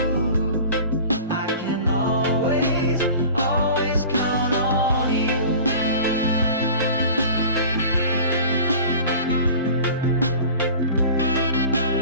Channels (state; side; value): inverted; both; correlation -0.40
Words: I can always, always count on you.